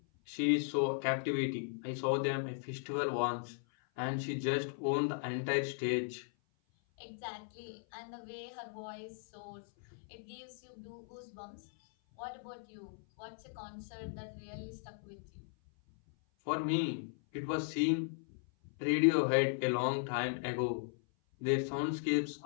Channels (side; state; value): right; silent; 53 dB below the other